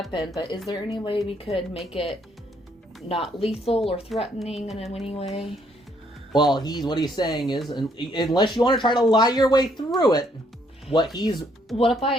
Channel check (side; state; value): both; normal; correlation 0.69